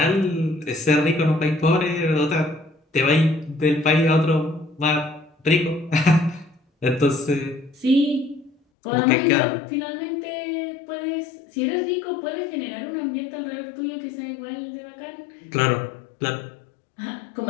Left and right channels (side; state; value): right; drops out; at 8.6 s